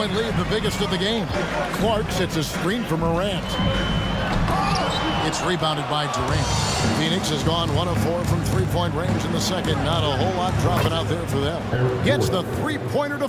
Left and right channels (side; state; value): both; identical; correlation 1.00